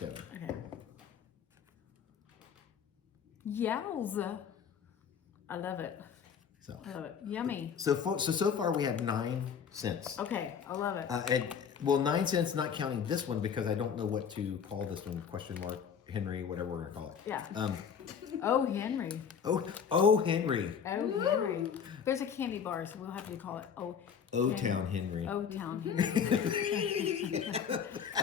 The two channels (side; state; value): right; quieter; 7.3 dB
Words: Okay. Yowza. I love it. So I love it. Yummy. so far we have 9 cents. Okay. I love it. And well, 9 cents, not counting this one because I don't know what to call this one. Question mark Henry, whatever we're gonna call it. Yeah. Um. Oh, Henry. Oh, Henry. Oh, Henry. There's a candy bar, so we'll have to call it O Town Henry. O Town Henry.